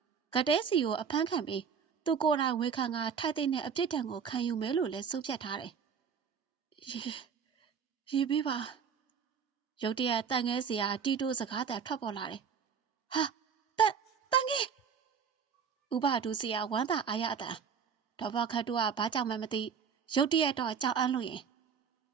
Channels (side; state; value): left; quieter; 6.7 dB